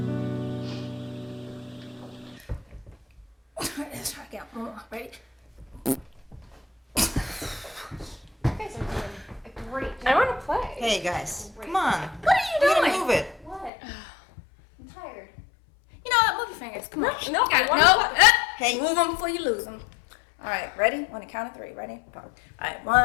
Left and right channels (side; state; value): right; drops out; at 13.7 s